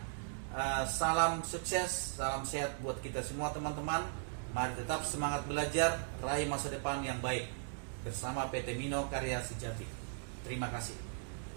Salam sukses, salam sehat buat kita semua teman-teman. Mari tetap semangat belajar, raih masa depan yang baik bersama PT Mino Karya Sejati. Terima kasih.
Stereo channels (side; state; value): left; silent; digital silence